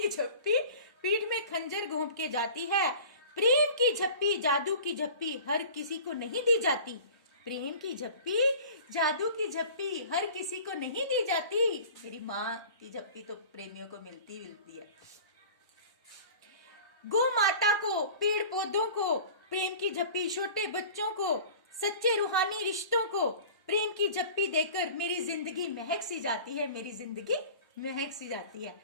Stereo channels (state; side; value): inverted; both; correlation -0.42